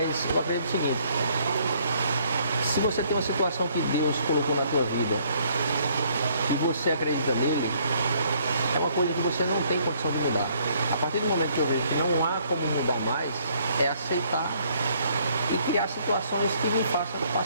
eu acredito o seguinte, se você tem uma situação que Deus colocou na tua vida e você acredita nele, é uma coisa que você não tem condição de mudar. A partir do momento que eu vejo que não há como mudar mais, é aceitar e criar situações que me façam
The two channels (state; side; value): inverted; both; correlation -0.65